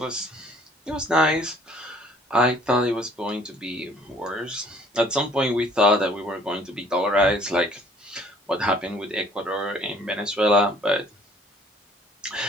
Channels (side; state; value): both; normal; correlation 0.57